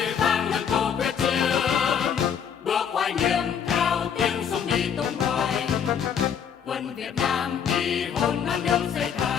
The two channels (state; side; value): quieter; right; 7.8 dB